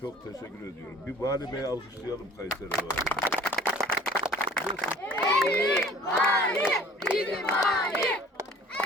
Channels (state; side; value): normal; both; correlation 0.49